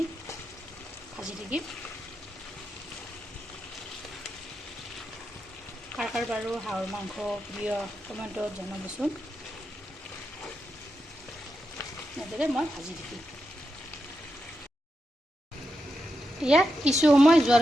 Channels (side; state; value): both; normal; correlation 0.87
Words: ভাজি থাকিম। কাৰ বাৰু হাঁহৰ মাংস প্ৰিয় কমেণ্টত জনাবচোন। এনেদৰে মই ভাজি থাকিম। এয়া কিছু সময়